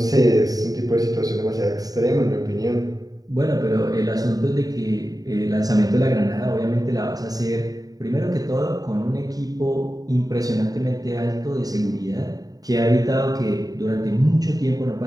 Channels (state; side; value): late; left; 0.18 ms